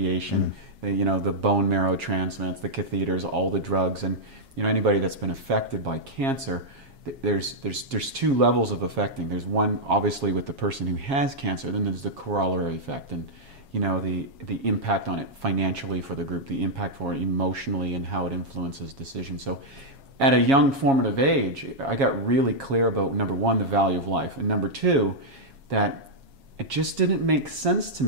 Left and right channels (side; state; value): left; late; 7.3 ms